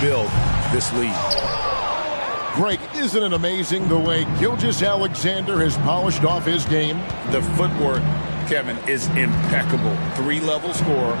this lead. Greg, isn't it amazing the way Gilgeous-Alexander has polished off his game? The footwork, Kevin, is impeccable. 3-level scorer,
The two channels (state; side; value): inverted; both; correlation -1.00